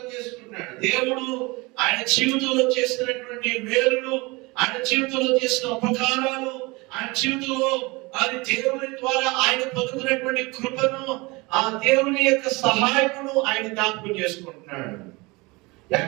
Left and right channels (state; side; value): quieter; left; 24.7 dB